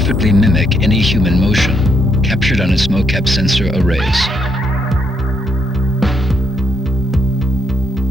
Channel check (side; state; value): both; normal; correlation 0.76